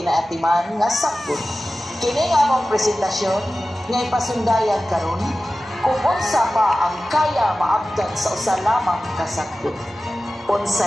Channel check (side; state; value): both; normal; correlation 0.95